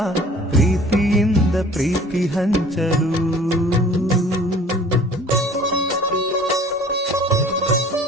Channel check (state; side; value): normal; both; correlation 0.49